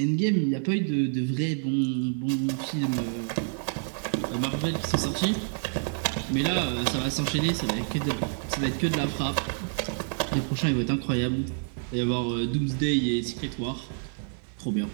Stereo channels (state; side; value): silent; left; 59 dB below the other